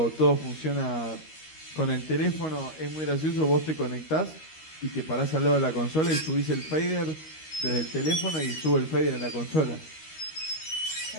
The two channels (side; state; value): right; late; 13 ms